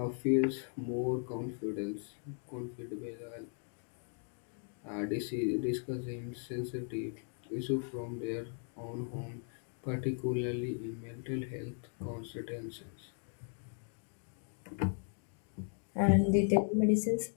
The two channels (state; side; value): silent; right; 53 dB below the other